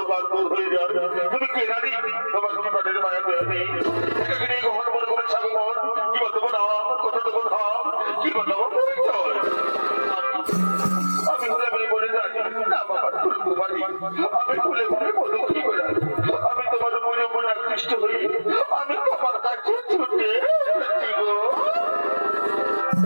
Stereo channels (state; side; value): inverted; both; correlation -1.00